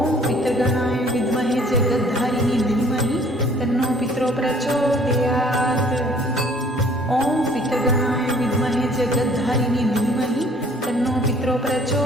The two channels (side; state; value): both; normal; correlation 0.57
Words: पितृगणाय विद्महे जगद्धारिणी धीमहि तन्नो पितरो प्रचोदयात्। ॐ पितृगणाय विद्महे जगद्धारिणी धीमहि तन्नो पितरो